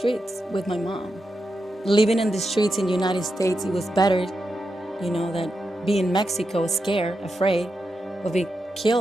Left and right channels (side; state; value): both; normal; correlation 0.87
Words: with my mom. Living in the streets in the United States, it was better, than being in Mexico, scared, afraid of being